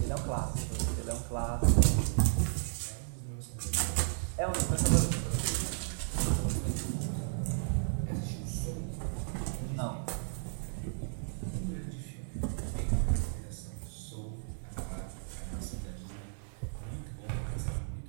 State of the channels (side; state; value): left; silent; digital silence